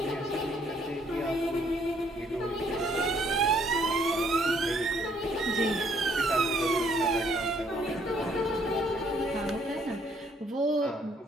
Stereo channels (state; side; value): normal; both; correlation 0.66